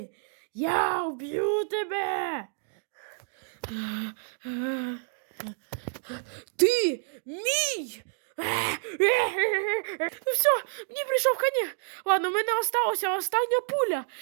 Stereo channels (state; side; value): silent; left; digital silence